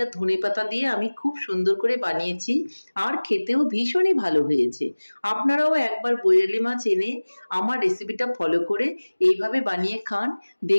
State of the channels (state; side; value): inverted; both; correlation -1.00